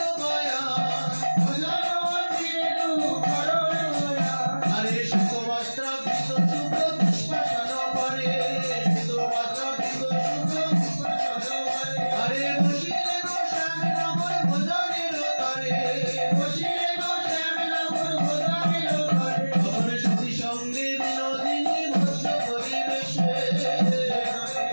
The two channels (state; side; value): inverted; both; correlation -1.00